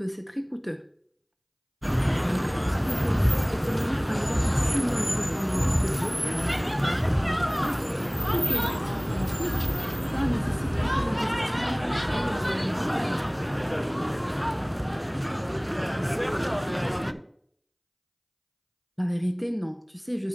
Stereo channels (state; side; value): identical; both; correlation 1.00